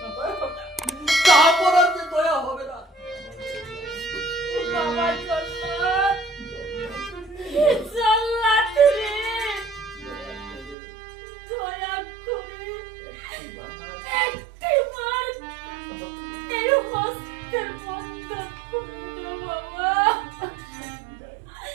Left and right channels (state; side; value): drops out; left; at 10.8 s